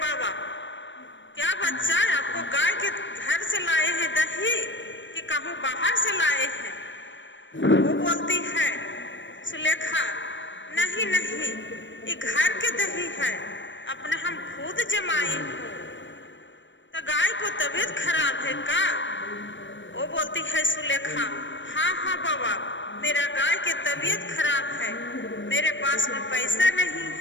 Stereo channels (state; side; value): late; right; 0.54 ms